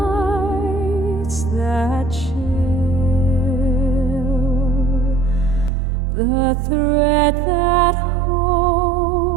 that chill, the thread that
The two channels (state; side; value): drops out; left; at 5.7 s